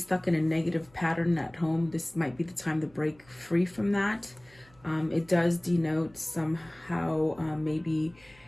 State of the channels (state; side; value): noise; right; hum, 28 dB below the sound